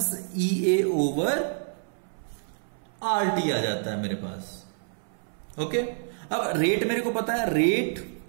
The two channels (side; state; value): left; silent; 60 dB below the other